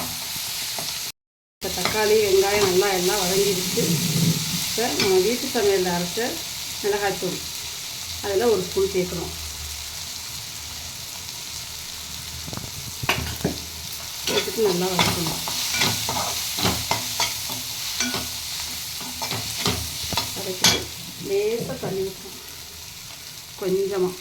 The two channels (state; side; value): identical; both; correlation 1.00